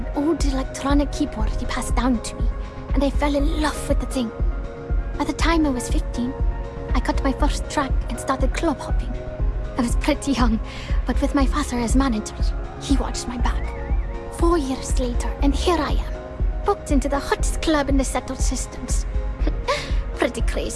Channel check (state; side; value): identical; both; correlation 1.00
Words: old electronic keyboard he passed down to me, and I fell in love with the thing. By the time I was 15, I got my first track and started club hopping. I was pretty young, but with my father as manager, he watched my back. 4 years later, and here I am, booked into the hottest club in the settled systems. Pretty